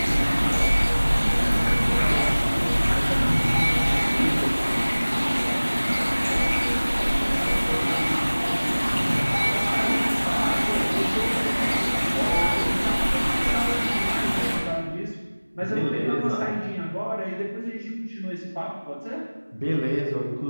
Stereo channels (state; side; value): inverted; both; correlation -1.00